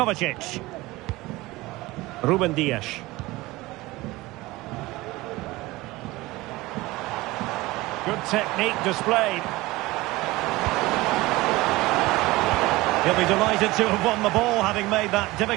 Ruben Dias. Good technique displayed. He'll be delighted to have won the ball, having made that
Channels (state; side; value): quieter; left; 20.1 dB